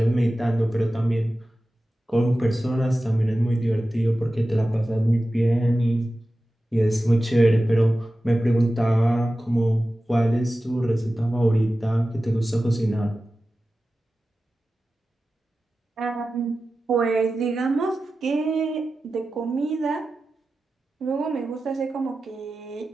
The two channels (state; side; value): normal; both; correlation 0.94